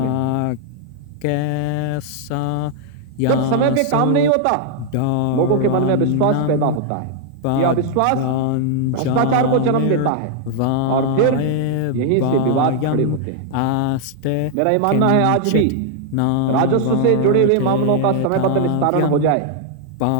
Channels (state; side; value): different; both; correlation 0.00